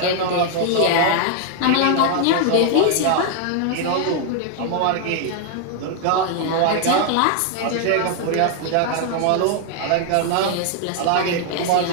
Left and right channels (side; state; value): both; different; correlation 0.00